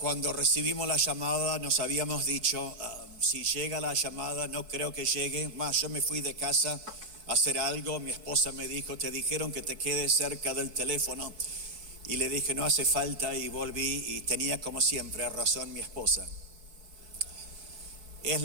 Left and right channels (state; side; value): late; left; 4.6 ms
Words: recibimos la llamada, nos habíamos dicho, si llega la llamada, no creo que llegue. Más, yo me fui de casa a hacer algo, mi esposa me dijo, te dijeron que te quedes cerca del teléfono. Y le dije, no hace falta, y volví y tenía como siempre razón mi esposa. Es